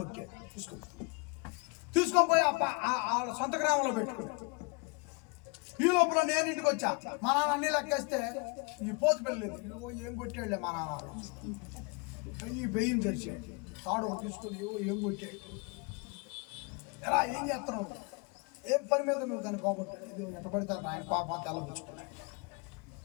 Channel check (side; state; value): right; quieter; 31.6 dB